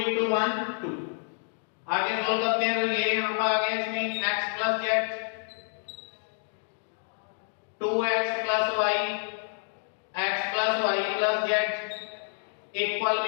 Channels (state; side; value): silent; right; digital silence